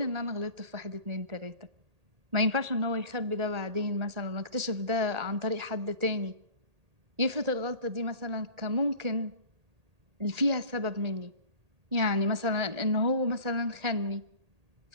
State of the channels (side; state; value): left; late; 1.8 ms